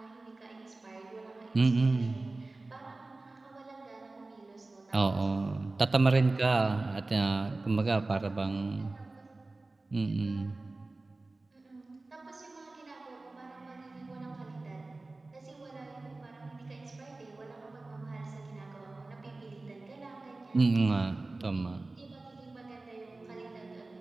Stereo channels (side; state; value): left; quieter; 3.2 dB